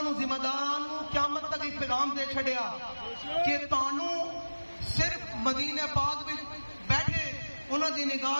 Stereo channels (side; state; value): both; inverted; correlation -1.00